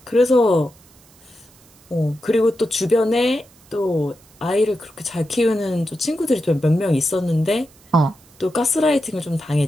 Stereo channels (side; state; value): right; noise; hiss, 28 dB below the sound